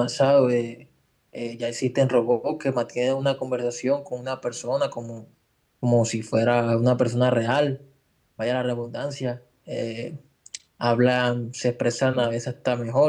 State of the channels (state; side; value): identical; both; correlation 1.00